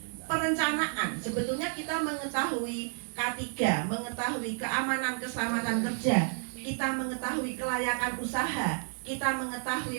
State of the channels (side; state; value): left; silent; 57 dB below the other